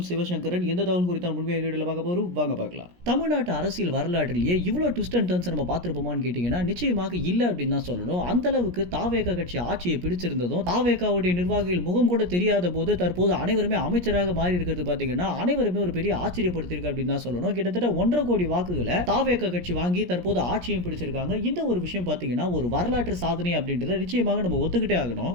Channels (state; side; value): late; left; 17 ms